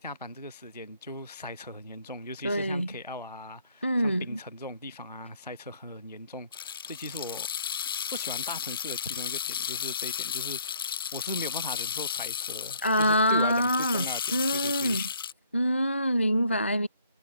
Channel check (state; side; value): inverted; both; correlation -0.63